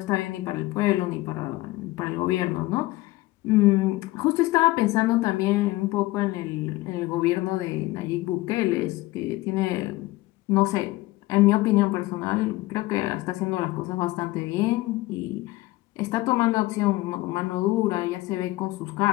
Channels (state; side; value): quieter; right; 19.0 dB